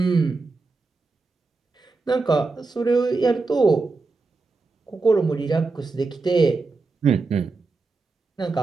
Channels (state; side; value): quieter; left; 3.9 dB